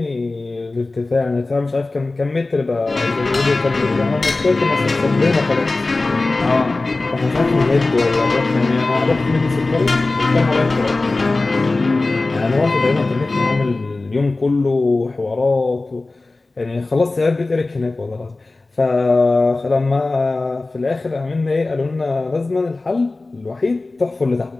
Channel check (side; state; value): right; quieter; 3.3 dB